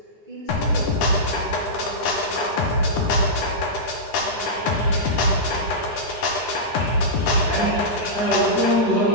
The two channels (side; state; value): right; late; 9.9 ms